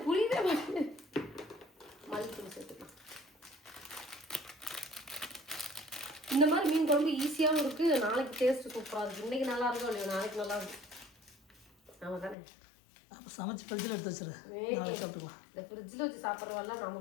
புரியவே மாட்டேங்குது. மஞ்சத்தூள் சேர்த்துக்கலாம். இந்த மாதிரி மீன் குழம்பு ஈஸியாகவும் இருக்குது, நாளைக்கு டேஸ்ட்டு சூப்பராக இருக்குது. இன்றைக்கி நல்லா இருக்கும் இல்லையா, நாளைக்கு நல்லா இருக்கும். ஆமாம் தானே? அப்போ சமைச்சு ஃப்ரிட்ஜில் எடுத்து வச்சிரு, நாளைக்கு சாப்பிட்டுக்கலாம். இந்த ஃப்ரிட்ஜில் வச்சு சாப்பிட்றதெல்லாம்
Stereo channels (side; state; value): right; drops out; at 12.4 s